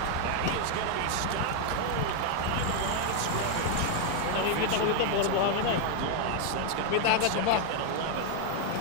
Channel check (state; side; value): different; both; correlation 0.00